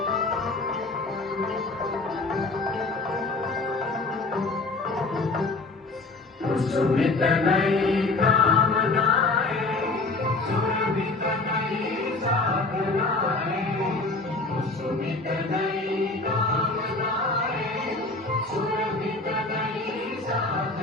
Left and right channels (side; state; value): right; quieter; 3.4 dB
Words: सुमित नई कामनाएं सुरभित नई साधनाएं सुमित नई कामनाएं सुरभित नई